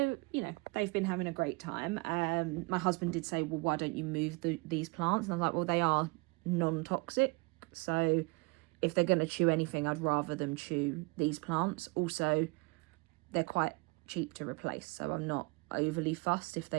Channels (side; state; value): left; quieter; 27.2 dB